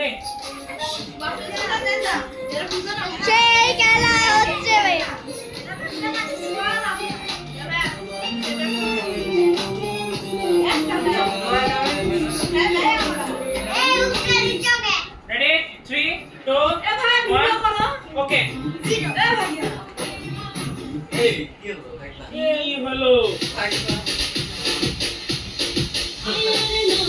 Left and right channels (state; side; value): identical; both; correlation 1.00